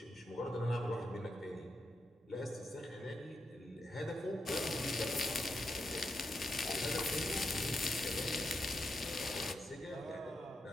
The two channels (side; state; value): both; normal; correlation 0.85